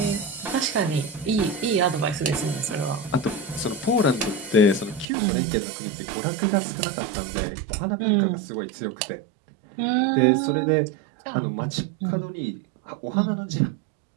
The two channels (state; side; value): drops out; left; at 5.1 s